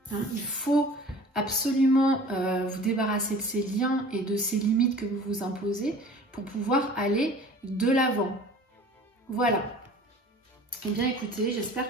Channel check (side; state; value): both; normal; correlation 0.45